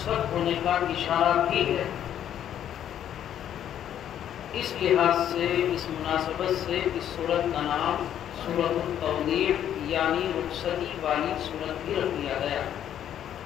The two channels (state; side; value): quieter; right; 10.3 dB